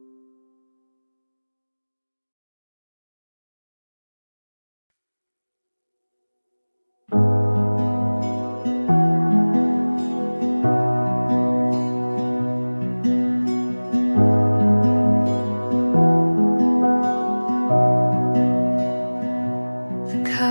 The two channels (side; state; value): both; inverted; correlation -1.00